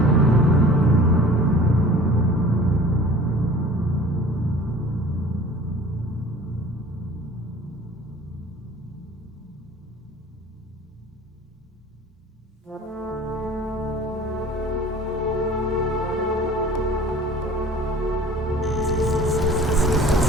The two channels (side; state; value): both; normal; correlation 0.45